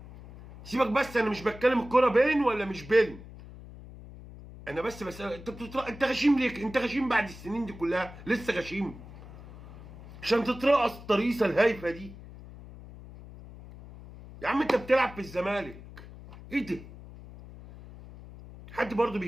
سيبك بس، انا مش بتكلم الكوره بين ولا مش بين، انا بس بسألك انت غشيم ليه؟ انت غشيم بعد السنين دي كلها لسه غشيم عشان تترقص الطريقه الهايفه دي؟ يا عم انت بتلعب في الزمالك، ايه ده؟ حد برضه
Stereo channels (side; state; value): left; noise; hum, 16 dB below the sound